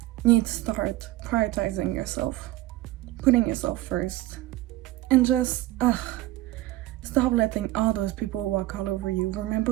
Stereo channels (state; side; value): quieter; left; 16.6 dB